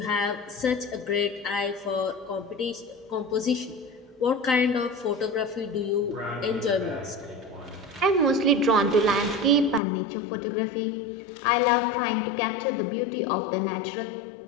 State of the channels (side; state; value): right; drops out; at 9.8 s